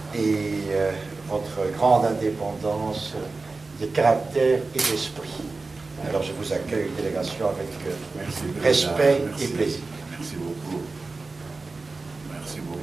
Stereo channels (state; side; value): quieter; left; 3.8 dB